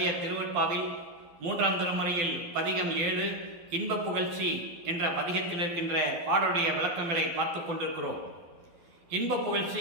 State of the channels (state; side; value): late; left; 12 ms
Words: திருவற்பாவில் 3ஆம் திருமுறையில் பதிகம் 7 இன்ப புகழ்ச்சி என்ற பதிகத்தில் இருக்கின்ற பாடலுடைய விளக்கங்களை பார்த்து கொண்டிருக்கிறோம். இன்ப